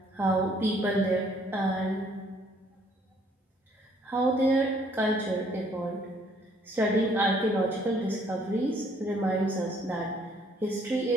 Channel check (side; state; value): both; normal; correlation 0.63